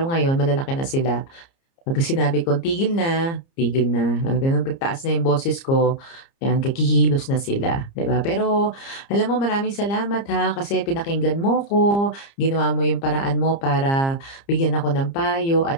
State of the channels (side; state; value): right; late; 30 ms